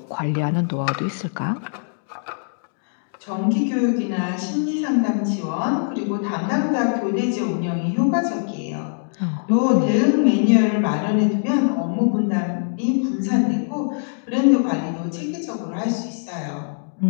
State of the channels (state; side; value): silent; right; digital silence